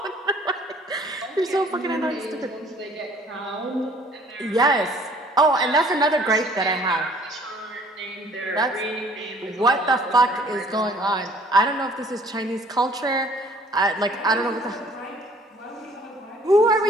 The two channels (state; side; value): normal; both; correlation 0.57